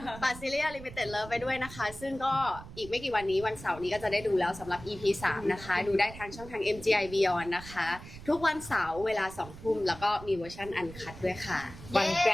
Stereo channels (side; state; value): right; noise; rumble, 15 dB below the sound